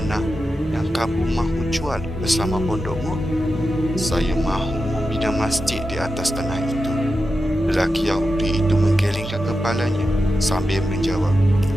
yang kamu mahu jual bersama pondokmu?" "Saya mahu membina masjid di atas tanah itu." Lelaki Yahudi itu menggelengkan kepalanya sambil menjawab,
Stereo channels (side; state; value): both; normal; correlation 0.90